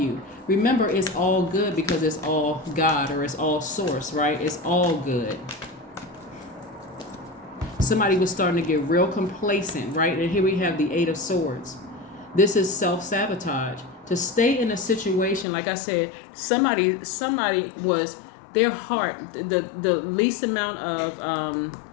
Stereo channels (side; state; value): right; drops out; at 15.5 s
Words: Remember, it's all good because it's all God or it's all source, right? It's all good. Somebody was starting to get real complacent, right? And here we have the Eight of Swords. This is self-sabotage. To stay in a situation, like I said, somebody was, their heart, the least amount of